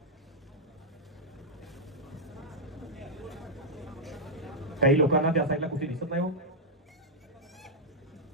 काही लोकांना त्या साईडला कुठे दिसत नाही हो,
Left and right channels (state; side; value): normal; both; correlation -0.05